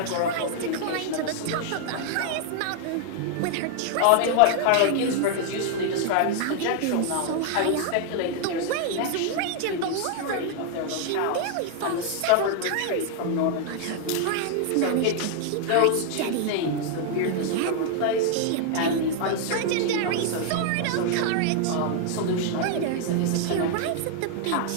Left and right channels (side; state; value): both; different; correlation 0.00